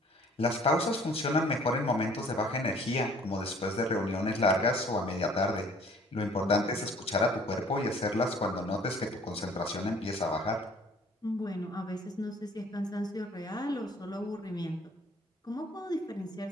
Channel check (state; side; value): normal; both; correlation 0.54